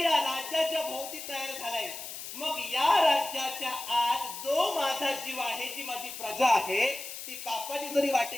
या राज्याच्या भोवती तयार झालंय. मग या राज्याच्या आत जो माझा जीव आहे, जी माझी प्रजा आहे, ती पापाची जरी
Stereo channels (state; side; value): noise; left; hiss, 9 dB below the sound